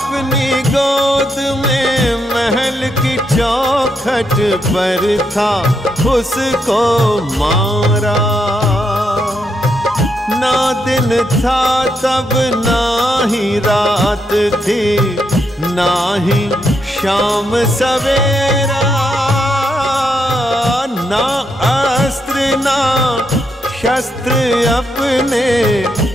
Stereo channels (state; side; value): normal; both; correlation 0.79